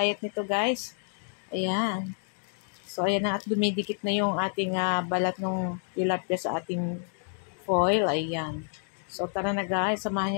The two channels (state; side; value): silent; right; 59 dB below the other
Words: nito guys. Ayan. So, ayan na at dumidikit na yung ating balat ng tilapia sa ating foil. Ayan. So, tara na guys. Samahan